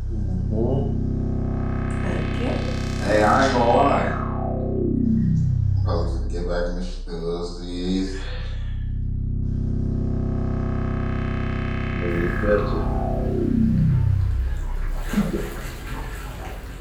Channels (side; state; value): both; identical; correlation 1.00